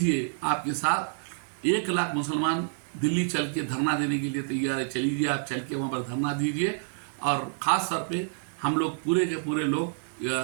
आपके साथ 1 लाख मुसलमान दिल्ली चल के धरना देने के लिए तैयार है। चलीजिए, आप चल के वहाँ पर धरना दीजिए। और ख़ास तौर पे हम लोग पूरे के पूरे लोग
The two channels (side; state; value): left; silent; digital silence